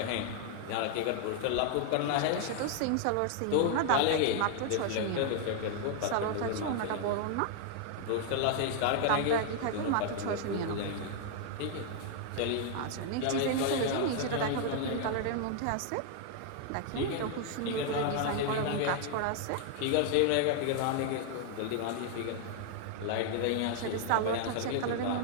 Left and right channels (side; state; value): both; different; correlation 0.00